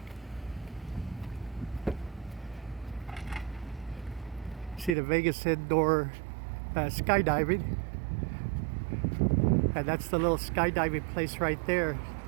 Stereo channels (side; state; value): left; drops out; at 5.0 s